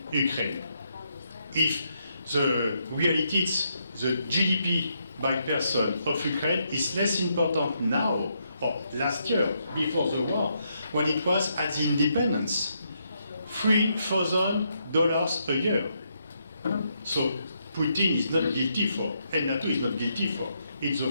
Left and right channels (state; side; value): inverted; both; correlation -0.78